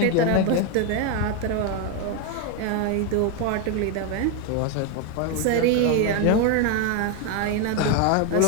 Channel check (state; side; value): different; both; correlation 0.01